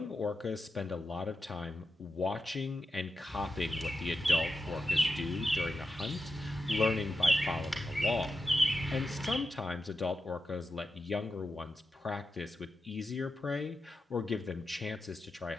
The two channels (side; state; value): both; normal; correlation 0.90